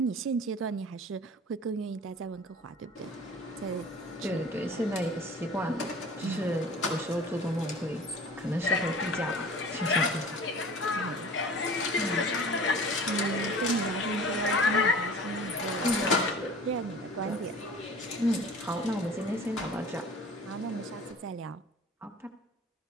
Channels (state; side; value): normal; both; correlation 0.43